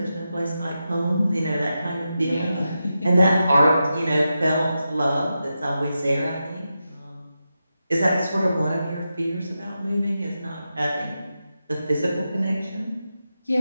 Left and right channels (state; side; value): inverted; both; correlation -0.89